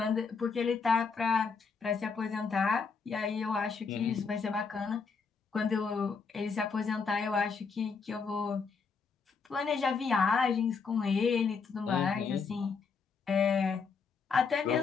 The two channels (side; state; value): right; quieter; 5.2 dB